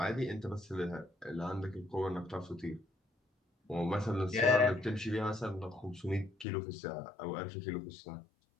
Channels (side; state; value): right; drops out; at 6.5 s